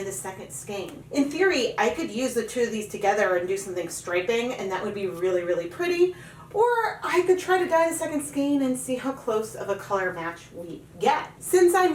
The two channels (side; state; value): both; identical; correlation 1.00